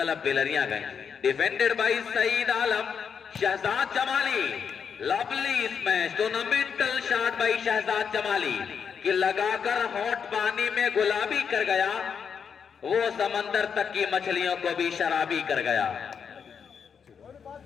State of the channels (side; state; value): right; quieter; 6.8 dB